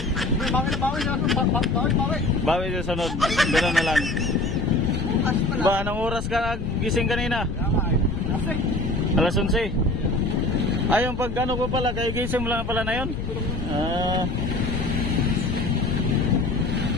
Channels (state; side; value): noise; left; rumble, 6 dB below the sound